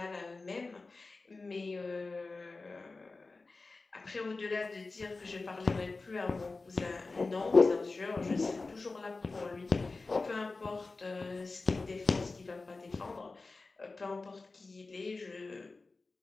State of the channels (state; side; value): quieter; right; 3.7 dB